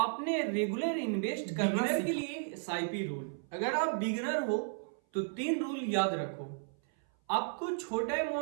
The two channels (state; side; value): silent; left; 55 dB below the other